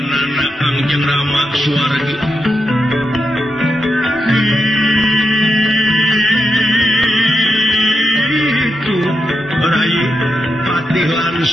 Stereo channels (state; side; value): normal; both; correlation 0.86